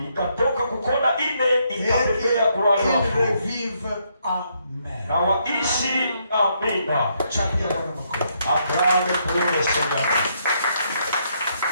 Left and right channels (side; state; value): both; inverted; correlation -0.75